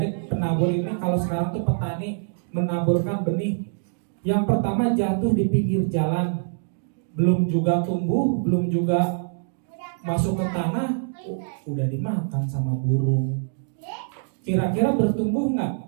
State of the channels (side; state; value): left; silent; digital silence